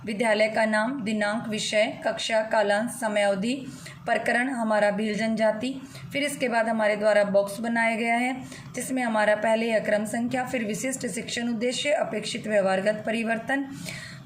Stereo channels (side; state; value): both; identical; correlation 1.00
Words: विद्यालय का नाम, दिनांक, विषय, कक्षा, कालांश, समयावधि, प्रकरण हमारा भील जनजाति, फिर इसके बाद हमारे द्वारा बॉक्स बनाया गया है जिसमें हमारा पहले है क्रम संख्या, फिर विशिष्ट शिक्षण उद्देश्य, अपेक्षित व्यवहारगत परिवर्तन।